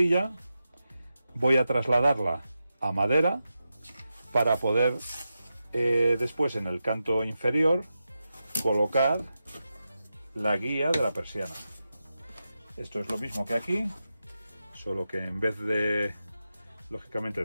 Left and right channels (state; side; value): inverted; both; correlation -0.90